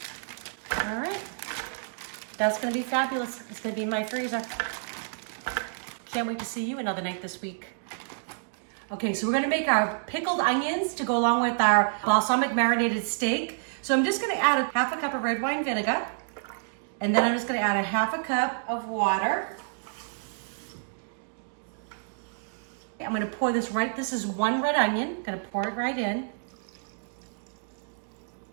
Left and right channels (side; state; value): left; silent; digital silence